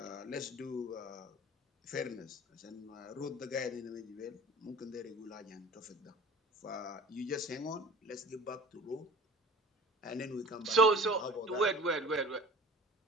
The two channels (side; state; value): both; normal; correlation 0.41